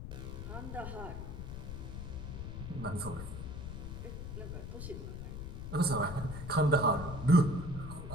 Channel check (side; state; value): left; noise; rumble, 7 dB below the sound